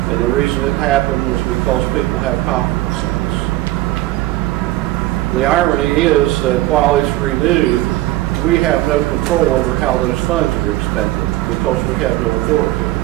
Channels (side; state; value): left; quieter; 16.9 dB